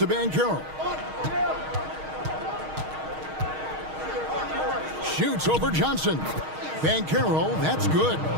Banchero. Shoots over Johnson. Banchero, that's good.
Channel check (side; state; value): left; late; 6.4 ms